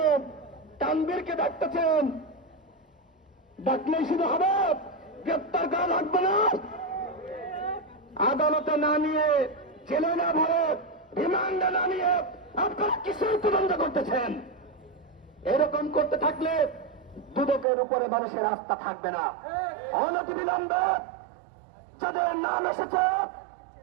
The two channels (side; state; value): left; drops out; at 17.7 s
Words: তানভীরকে ডাকতেছেন, ডাকলেই শুধু হবে? গ্রেপ্তার করা লাগবে না? আদালতে না নিয়ে, জেলে না ভরে, রিমান্ডে না নিয়ে আপনারা কিসের তদন্ত করতেছেন? এরকম করতে থাকলে দুদকের উপরে মানুষের আস্থা থাকবে না। অনতিবিলম্বে যাদের নাম এসেছে